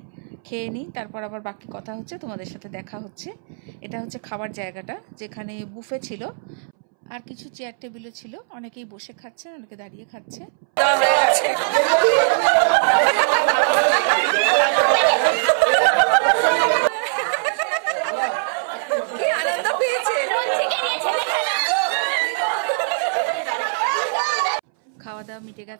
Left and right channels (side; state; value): left; silent; 65 dB below the other